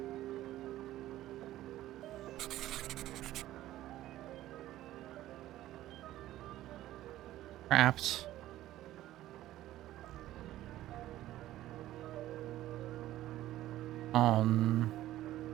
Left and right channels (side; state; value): left; quieter; 14.5 dB